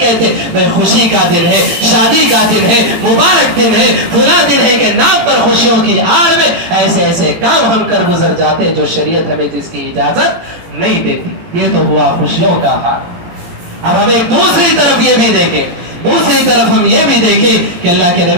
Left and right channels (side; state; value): left; late; 18 ms